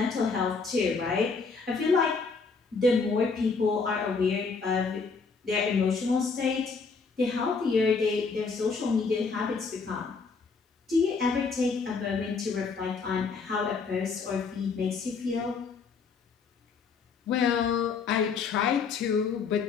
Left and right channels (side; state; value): right; quieter; 4.9 dB